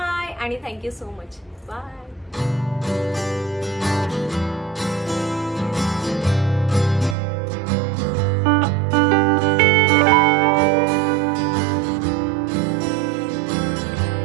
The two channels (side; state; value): left; drops out; at 7.2 s